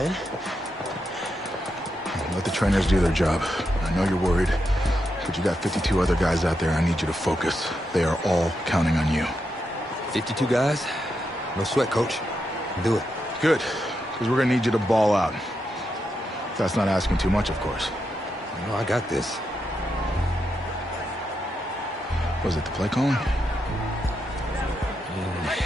Let the trainers do their job. I know you're worried, but you got 52 other guys out there. I need you to focus. They are all counting on you. 52 guys? No sweat, Coach. Do it. Good, because we're gonna need you to ball out. That's not asking too much, of course. No, I got this. Was it the play calling?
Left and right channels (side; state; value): both; normal; correlation 0.84